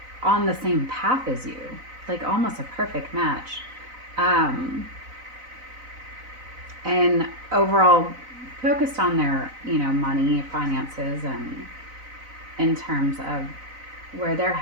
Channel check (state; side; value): late; left; 4.0 ms